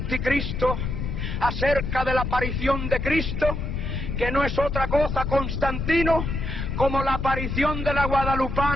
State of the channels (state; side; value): noise; left; rumble, 3 dB below the sound